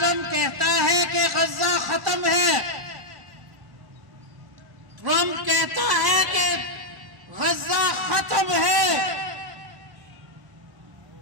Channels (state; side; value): late; left; 1.1 ms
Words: کہتا ہے کہ غزہ ختم ہے، ٹرمپ کہتا ہے کہ غزہ ختم ہے،